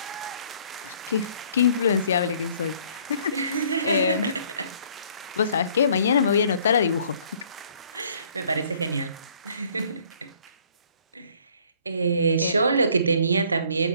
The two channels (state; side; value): inverted; both; correlation -0.59